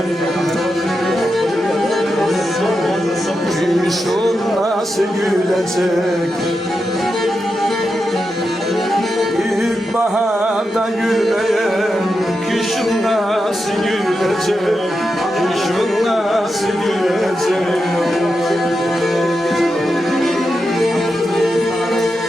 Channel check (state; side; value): normal; both; correlation 0.88